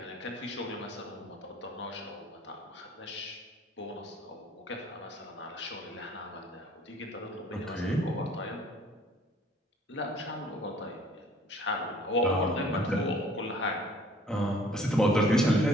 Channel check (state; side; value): normal; both; correlation 0.55